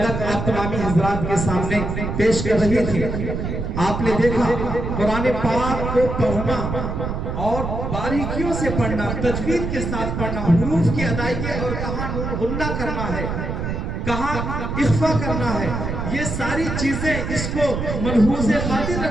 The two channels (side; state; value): right; noise; rumble, 3 dB below the sound